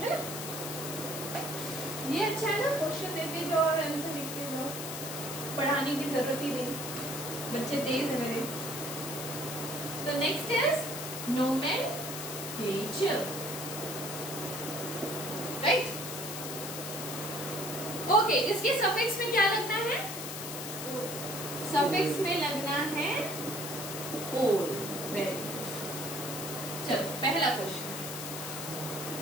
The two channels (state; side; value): noise; left; hiss, 6 dB below the sound